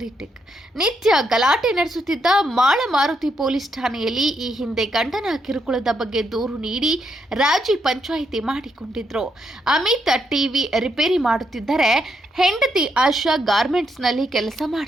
ನಡೆಸುತ್ತಿದ್ದ ಮಾಳಮಾರುತಿ ಪೊಲೀಸ್ ಠಾಣೆಯಲ್ಲಿ ಈ ಹಿಂದೆ ಗಂಡನ ಕಿರುಕುಳದ ಬಗ್ಗೆ ದೂರು ನೀಡಿ ರಾಜಿ ಪಂಚಾಯಿತಿ ಮಾಡಿಕೊಂಡಿದ್ರು. ಅಮಿತ್ ಟಿವಿ ರಿಪೇರಿ ಮಾಡುತ್ತಿದ್ದರೆ ಹೆಂಡತಿ ಆಶಾ ಗಾರ್ಮೆಂಟ್ಸ್ನಲ್ಲಿ ಕೆಲಸ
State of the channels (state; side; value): normal; both; correlation 0.79